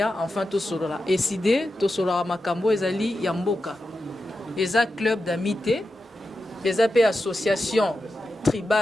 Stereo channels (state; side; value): normal; both; correlation 0.90